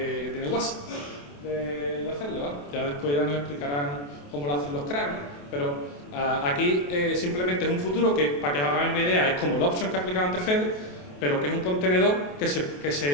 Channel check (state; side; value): late; right; 28 ms